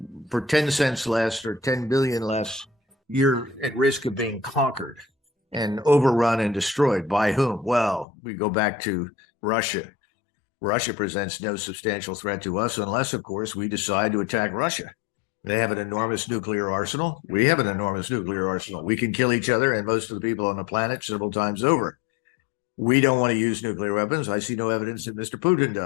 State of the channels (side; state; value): right; drops out; at 8.1 s